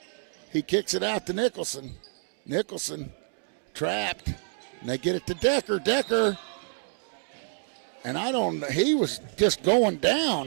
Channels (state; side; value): silent; left; digital silence